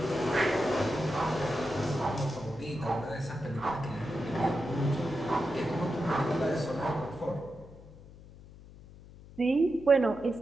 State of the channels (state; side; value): noise; left; hum, 19 dB below the sound